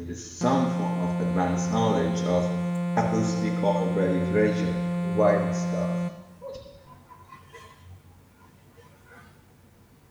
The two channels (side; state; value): both; identical; correlation 1.00